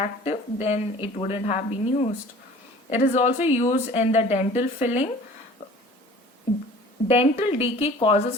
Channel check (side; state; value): both; normal; correlation 0.46